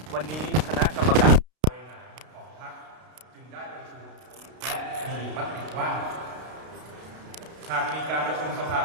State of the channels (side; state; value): left; late; 32 ms